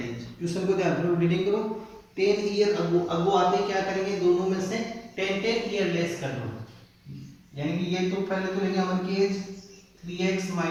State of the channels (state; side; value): identical; both; correlation 1.00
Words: Question को ध्यान से रीडिंग करो। 10 ईयर अगो आते क्या करेंगे? दोनों में से 10 ईयर लेस कर लो, यानी कि ये तो पहले तो लेंगे अमन की एज 3x